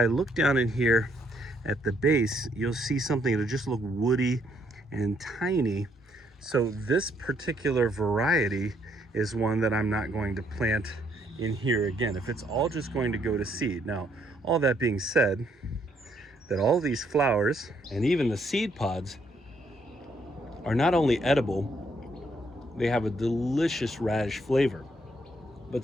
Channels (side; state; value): both; normal; correlation 0.70